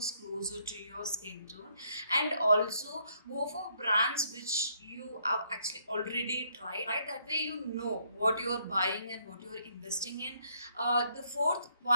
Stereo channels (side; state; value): both; inverted; correlation -0.70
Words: closer to your skin tone, and also go for brands which you have actually already tried. Right, that way you know what you are buying and what you are investing in. The fourth